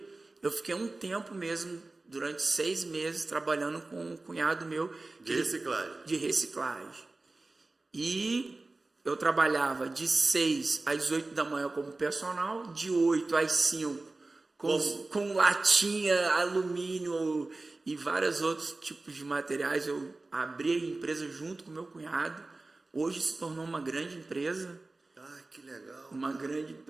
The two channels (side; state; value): left; quieter; 3.2 dB